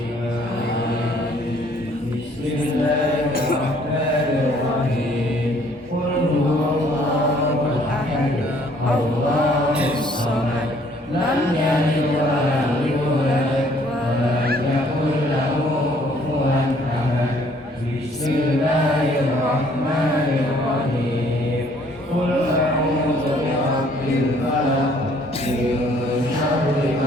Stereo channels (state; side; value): normal; both; correlation 0.61